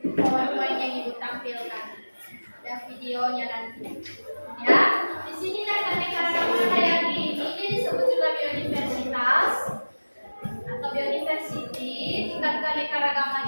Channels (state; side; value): inverted; both; correlation -1.00